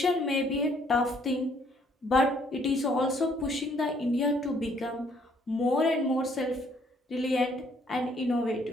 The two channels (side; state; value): both; normal; correlation 0.65